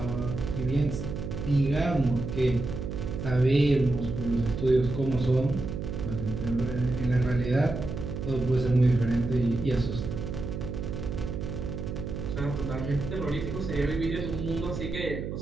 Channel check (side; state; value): right; noise; hum, 5 dB below the sound